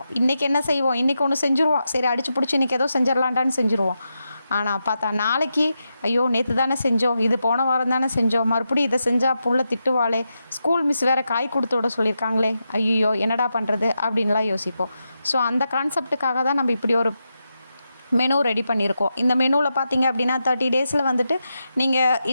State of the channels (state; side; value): inverted; both; correlation -0.87